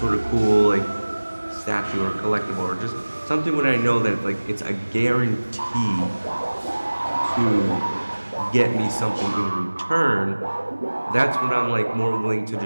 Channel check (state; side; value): inverted; both; correlation -1.00